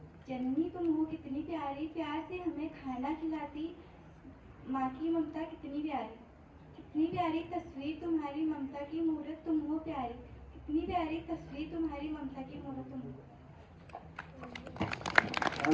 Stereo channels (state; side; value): identical; both; correlation 1.00